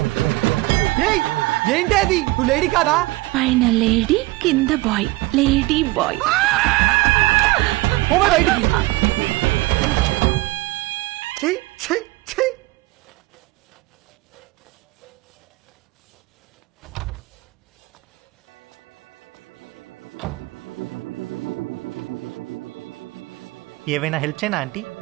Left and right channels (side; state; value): left; quieter; 20.6 dB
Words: ఏంటి అది? నువ్వు లేడీ కాదా? పైన లేడీ, కింద బాయ్. Lady bye. బయటికి. ఏవైనా హెల్ప్ చేయనా ఆంటీ?